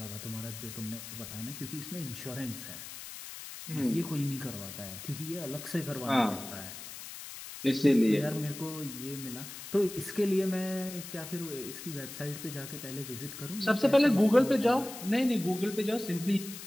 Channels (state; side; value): noise; left; hiss, 11 dB below the sound